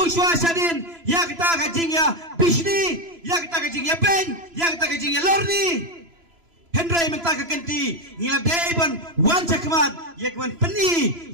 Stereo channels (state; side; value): late; left; 3.0 ms